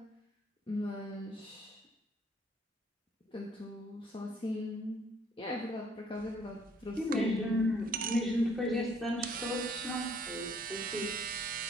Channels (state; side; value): normal; both; correlation 0.62